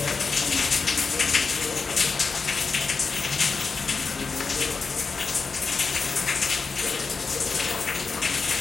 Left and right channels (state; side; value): quieter; right; 4.7 dB